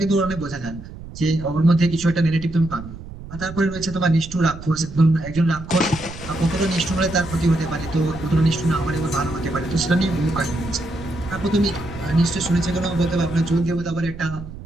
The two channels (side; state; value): right; noise; rumble, 13 dB below the sound